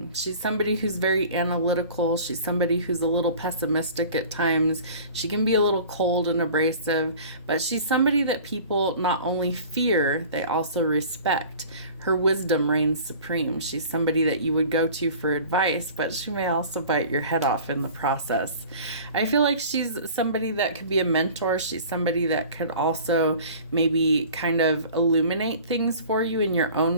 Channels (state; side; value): inverted; both; correlation -0.43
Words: She's somebody who's very analytical. She's somebody who's a little pessimistic at times. She can be a little cold and abrasive, but she's somebody that people not only fear, they also respect. Her wisdom reigns supreme. She's somebody that you would go to for advice, but she may also bite your head off in the process. I feel like she's somebody that could be a mentor. She's somebody that could also maybe kind of illuminate things for you in your